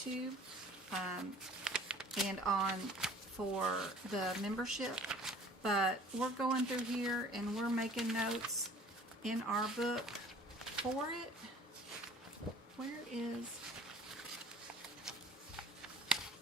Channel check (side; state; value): both; normal; correlation 0.49